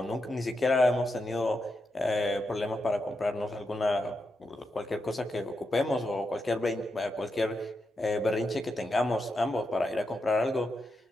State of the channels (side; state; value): both; normal; correlation 0.85